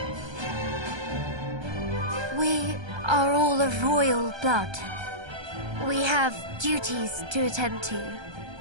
We are all of royal blood. We have duties to attend to.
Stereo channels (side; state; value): left; late; 1.3 ms